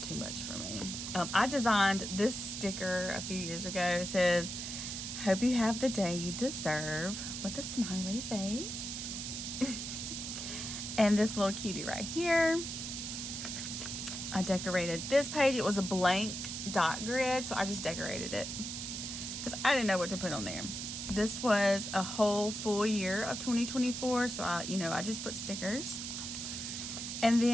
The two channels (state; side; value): noise; right; hiss, 5 dB below the sound